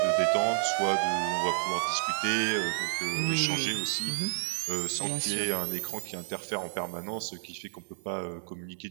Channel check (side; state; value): left; silent; digital silence